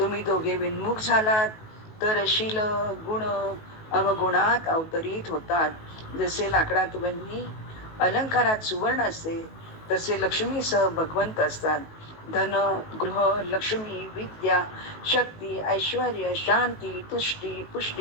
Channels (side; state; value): right; late; 18 ms